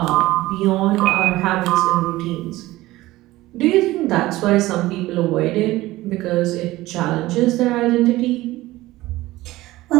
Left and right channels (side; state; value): left; quieter; 17.7 dB